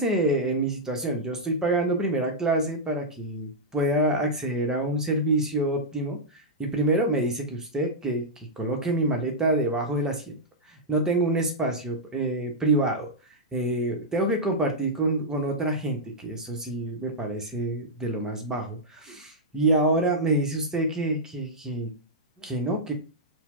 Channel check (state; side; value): normal; both; correlation -0.08